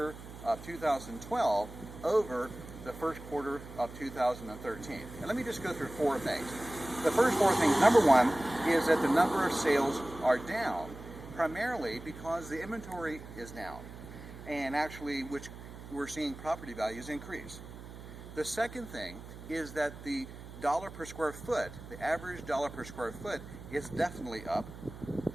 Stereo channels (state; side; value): noise; right; hum, 14 dB below the sound